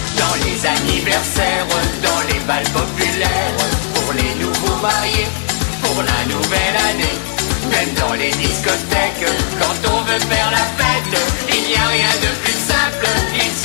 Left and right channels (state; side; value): silent; right; digital silence